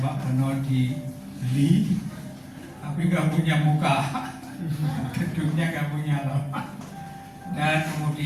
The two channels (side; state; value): both; identical; correlation 1.00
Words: Pak Beno dibeli, tapi nggak punya muka, gedungnya nggak punya loh. Dan